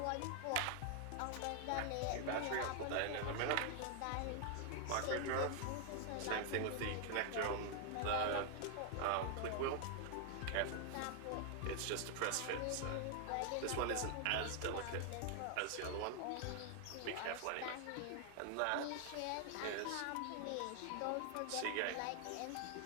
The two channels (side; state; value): both; different; correlation 0.00